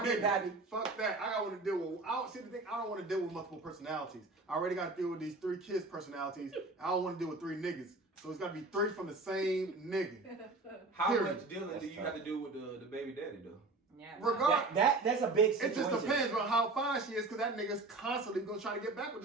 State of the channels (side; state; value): left; quieter; 3.3 dB